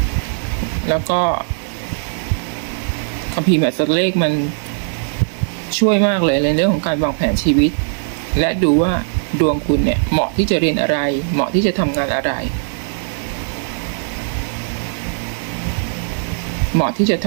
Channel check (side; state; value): left; silent; digital silence